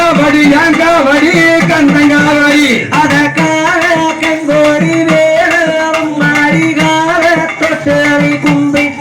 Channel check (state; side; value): identical; both; correlation 1.00